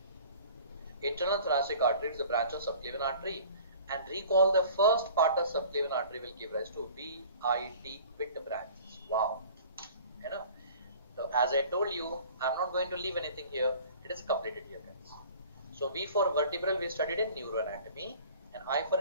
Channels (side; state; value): both; inverted; correlation -0.46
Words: Internal thoracic artery is a branch of subclavian artery. And recall, the first part of subclavian artery will give rise to VIT, with branches. Wow. You know. So as I told you, I'm not going to leave anything here. It is completed here, guys. So V for vertebral we studied in neuroanatomy, and I for